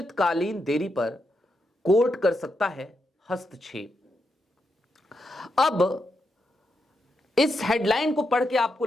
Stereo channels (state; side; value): normal; both; correlation 0.83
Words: देरी पर कोर्ट कर सकता है हस्तक्षेप। अब इस हेडलाइन को पढ़ के आपको